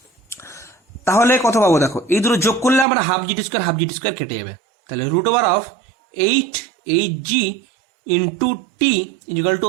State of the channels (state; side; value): drops out; left; at 2.9 s